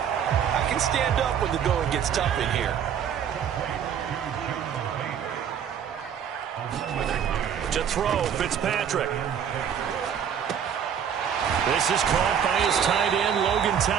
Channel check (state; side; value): quieter; left; 8.3 dB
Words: I can stand up when the going gets tough in here. To throw, Fitzpatrick. This is caught by his tight end, Logan